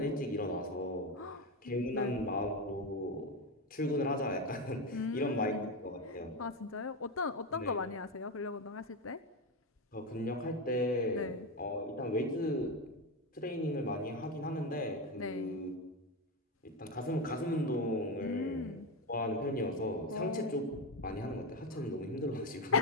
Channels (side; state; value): both; normal; correlation 0.14